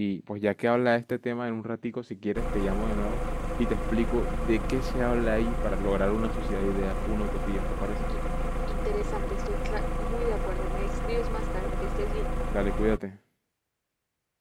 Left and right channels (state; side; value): identical; both; correlation 1.00